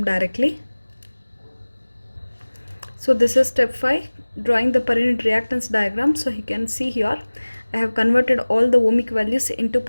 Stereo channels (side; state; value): both; inverted; correlation -1.00